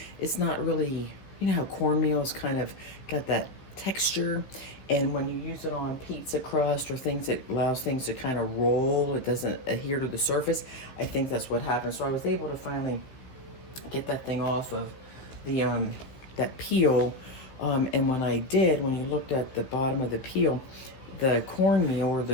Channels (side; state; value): right; late; 15 ms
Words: it's not really, you know how cornmeal's kind of got that texture. And when you use it on pizza crust or things that allows things to kind of roll, it doesn't adhere to the surface. I think that's what happened. So I was able to finally get that thing off of the that peel. And when I did, when you looked at the bottom of the peel, the cornmeal or